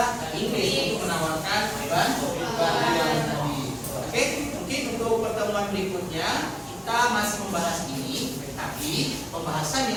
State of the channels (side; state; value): both; identical; correlation 1.00